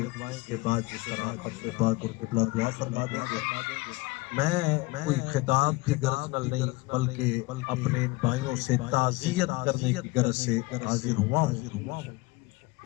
کے بعد جس طرح اپنے پاک اور قبلہ دعا فرما دیں گے میں کوئی خطاب کی غرض نہیں بلکہ اپنے بھائیوں سے تعزیت کرنے کی غرض سے حاضر ہوا ہوں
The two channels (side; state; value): right; quieter; 22.5 dB